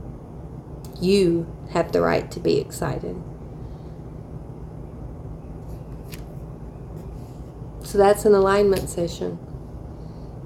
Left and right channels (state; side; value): identical; both; correlation 1.00